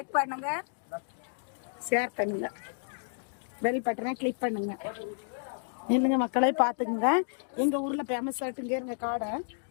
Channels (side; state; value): right; silent; digital silence